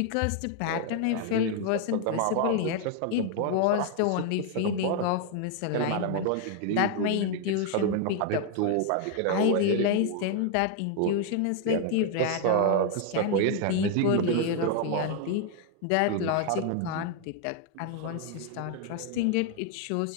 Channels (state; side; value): different; both; correlation 0.00